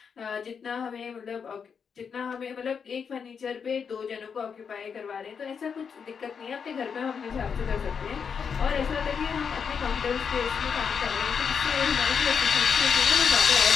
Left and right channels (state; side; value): quieter; right; 6.5 dB